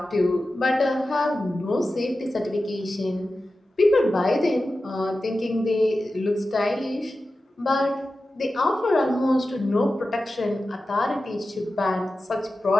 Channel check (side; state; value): both; normal; correlation 0.93